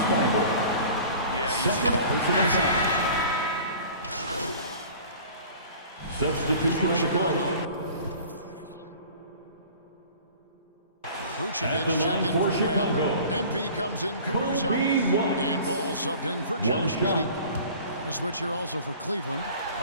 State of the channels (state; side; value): inverted; both; correlation -0.45